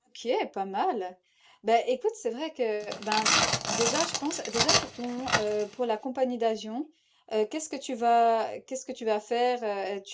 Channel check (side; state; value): both; identical; correlation 1.00